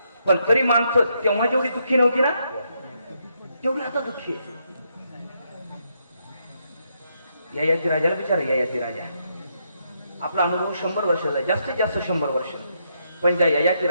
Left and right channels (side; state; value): both; inverted; correlation -0.78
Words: पण तरी माणसं तेव्हा जेवढी दुःखी नव्हती ना, तेवढी आता दुःखी आहे. ययाती राजाला विचार, ययाती राजा आपला अनुभव 100 वर्षाचा, जास्तीत जास्त 100 वर्ष. पण त्या ययाती